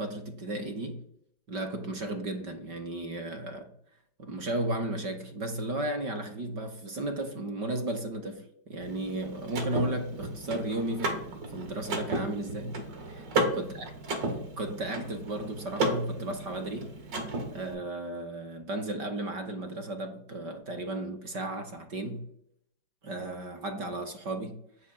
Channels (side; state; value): left; late; 5.2 ms